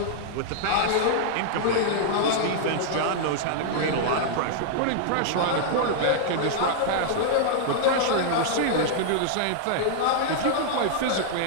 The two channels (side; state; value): both; different; correlation -0.01